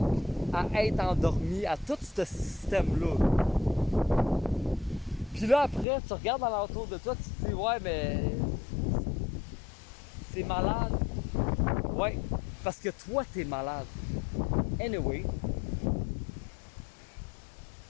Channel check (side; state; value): right; drops out; at 5.9 s